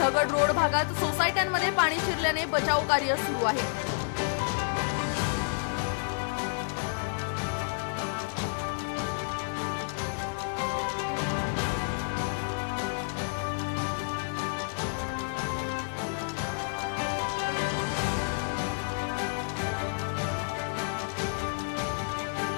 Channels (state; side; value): silent; right; digital silence